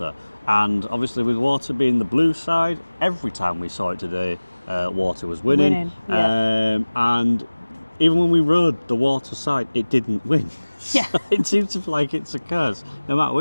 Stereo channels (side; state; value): both; inverted; correlation -1.00